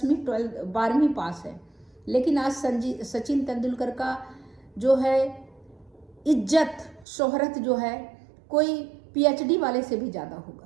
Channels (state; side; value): drops out; left; at 7.1 s